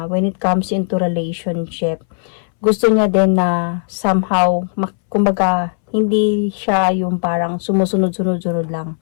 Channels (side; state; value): right; silent; 63 dB below the other